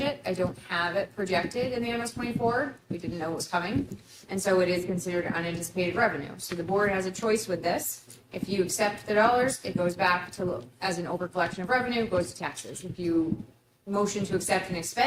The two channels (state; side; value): identical; both; correlation 1.00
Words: I don't have it projected in the MS 24. We didn't know it was coming. And so it is considered unanticipated revenue. So the board has a choice with this. If you accept the dollars, it goes back to, as an overcollection of revenue, goes to taxes. If you motion to accept and